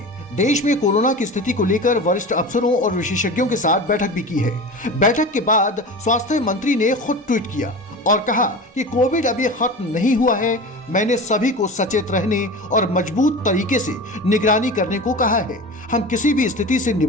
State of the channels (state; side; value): normal; both; correlation 0.31